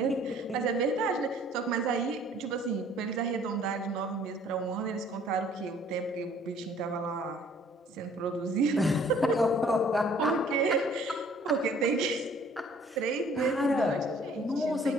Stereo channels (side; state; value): both; normal; correlation 0.57